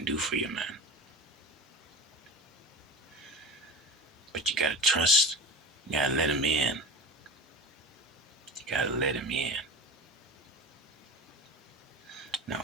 do for you, man. But you gotta trust. You gotta let him in. You gotta let him in.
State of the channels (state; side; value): normal; both; correlation 0.30